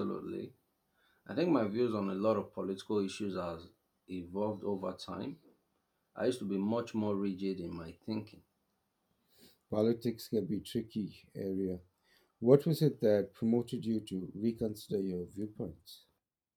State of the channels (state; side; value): identical; both; correlation 1.00